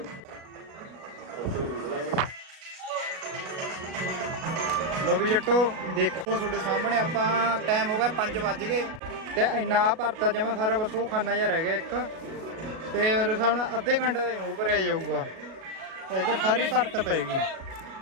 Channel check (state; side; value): late; left; 37 ms